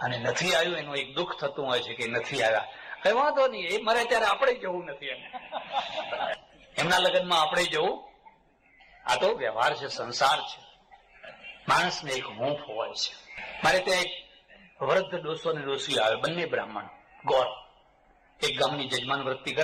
અને નથી આવ્યું. એનું એક દુઃખ થતું હોય છે કે નથી આવ્યા. કઈ વાંધો નહીં, એ મરે ત્યારે આપણે જવું નથી એને, એમના લગ્નમાં આપણે જવું. આ તો વ્યવહાર છે, સંસાર છે. માણસને એક હૂંફ હોય છે. મારે ત્યાં એક વૃદ્ધ ડોસો ને ડોસી આવે, બંને બ્રાહ્મણ ગોર. એક ગામની જજમાન વૃત્તિ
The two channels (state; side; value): identical; both; correlation 1.00